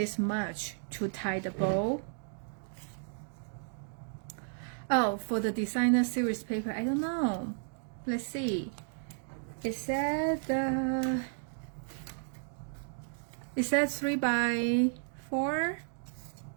much to tie the bow. Oh, for the designer series paper, I don't know. Let's see. It said 3x4,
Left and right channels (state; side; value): silent; left; digital silence